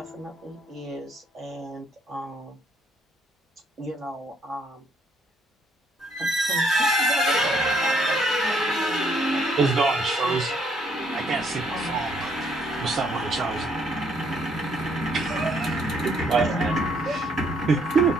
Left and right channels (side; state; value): both; normal; correlation 0.68